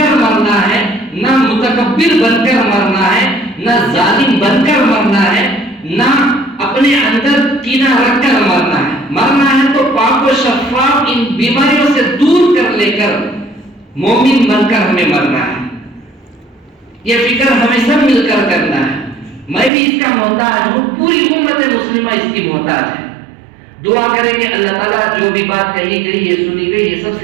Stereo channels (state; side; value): drops out; left; at 19.7 s